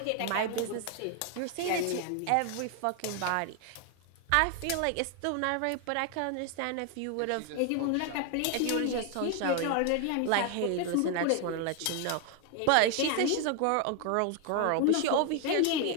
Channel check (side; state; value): both; different; correlation 0.00